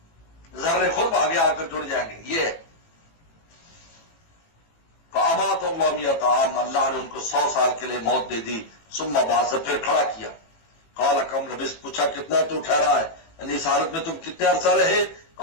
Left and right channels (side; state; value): right; late; 18 ms